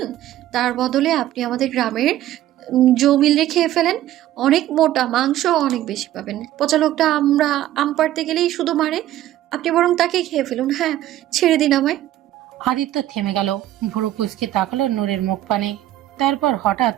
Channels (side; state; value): left; quieter; 13.5 dB